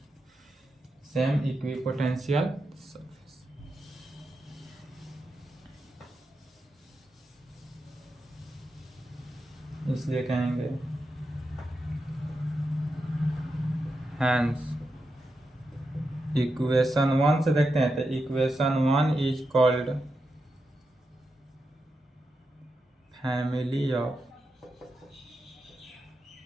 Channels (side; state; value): both; normal; correlation 0.87